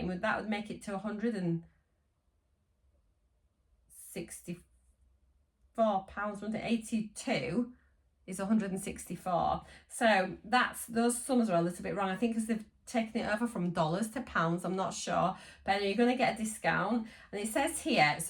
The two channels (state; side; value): identical; both; correlation 1.00